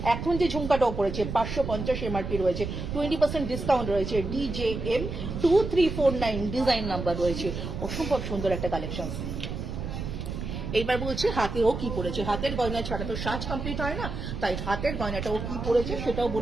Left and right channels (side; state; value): right; noise; rumble, 5 dB below the sound